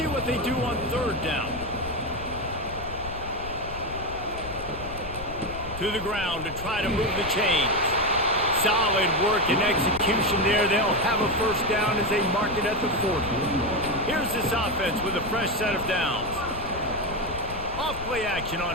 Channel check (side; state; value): left; noise; rumble, 12 dB below the sound